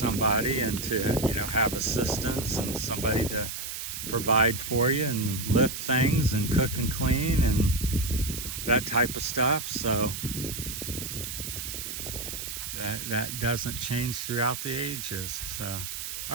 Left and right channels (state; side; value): noise; right; hiss, 6 dB below the sound